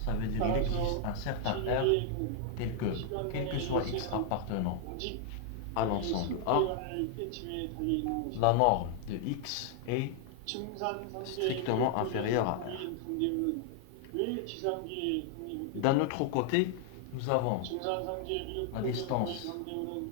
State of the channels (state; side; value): different; both; correlation 0.00